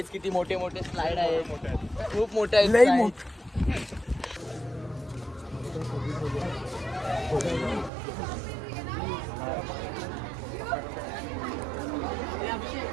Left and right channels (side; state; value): left; drops out; at 7.9 s